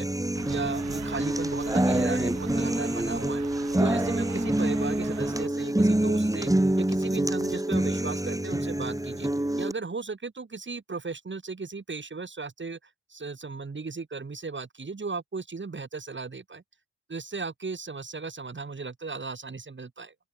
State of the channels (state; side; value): normal; both; correlation 0.79